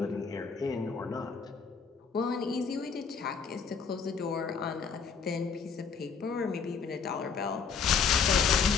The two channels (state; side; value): quieter; right; 5.9 dB